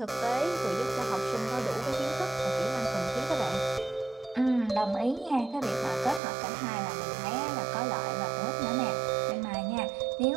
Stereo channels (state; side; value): drops out; left; at 6.2 s